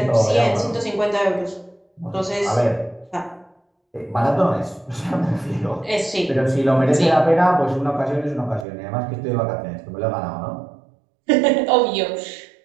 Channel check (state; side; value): drops out; left; at 8.7 s